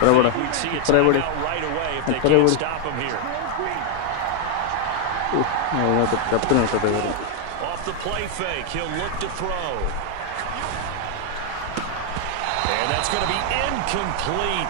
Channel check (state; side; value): different; both; correlation 0.00